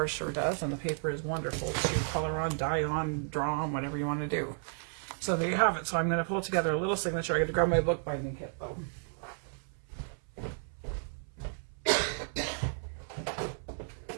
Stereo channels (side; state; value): left; silent; 56 dB below the other